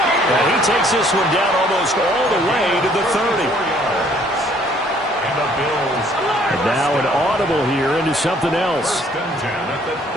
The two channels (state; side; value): normal; both; correlation 0.61